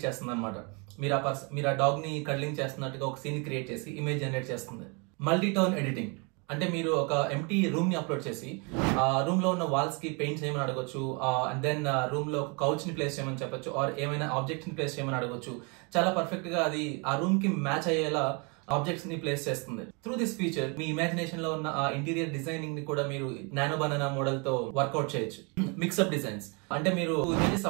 చేస్తుంది అనమాట. మీరు ఆ డాగ్ ని కడ్లింగ్ చేస్తున్నట్టుగా ఒక సీన్ క్రియేట్ చేసి ఇమేజ్ జనరేట్ చేస్తుంది. మల్టీ టోన్ ఎడిటింగ్ అంటే మీరు ఒక ఎంటీ రూమ్ ని అప్లోడ్ చేసి ఆ రూమ్ లో ఉన్న వాల్స్ కి పెయింట్ చేయమని అడగొచ్చు, అండ్ దెన్ రూమ్ లో కౌచ్ ని ప్లేస్ చేయమని చెప్పొచ్చు, ఆర్ ఏమైనా ఆబ్జెక్ట్స్ ని ప్లేస్ చేయమని అడగొచ్చు. చాలా పర్ఫెక్ట్ గా అది ఆ రూమ్ కి మ్యాచ్ అయ్యేలా ఆబ్జెక్ట్స్ ని ప్లేస్ చేస్తుంది. Through this feature me imagination లో ఉన్న ఆ ఇంటీరియర్ డిజైనింగ్ ని కూడా మీరు నానో బనానా మోడల్ తో వర్కౌట్ చేయొచ్చు. మిక్స్అప్ డిజైన్స్ అంటే మీరు ఇమేజెస్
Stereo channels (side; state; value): left; quieter; 32.8 dB